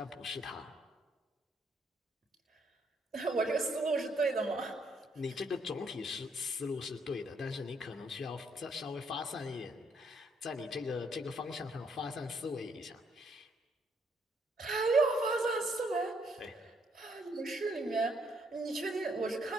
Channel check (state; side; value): normal; both; correlation 0.71